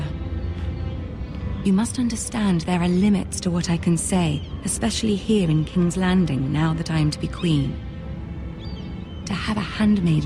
You must understand there are limits to what I can say, especially here in King's Landing, now that I am to be queen. To have a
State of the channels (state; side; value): identical; both; correlation 1.00